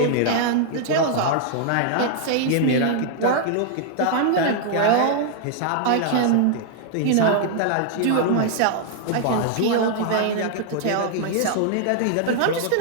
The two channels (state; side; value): different; both; correlation 0.00